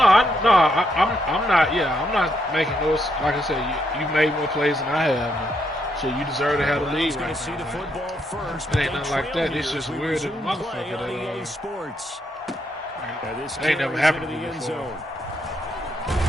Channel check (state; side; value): normal; both; correlation 0.77